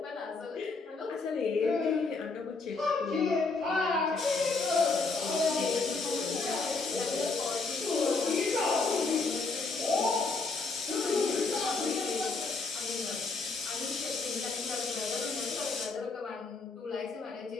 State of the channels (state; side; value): quieter; right; 4.0 dB